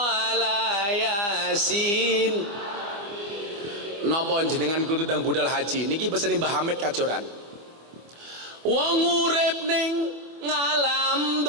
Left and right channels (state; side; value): late; left; 25 ms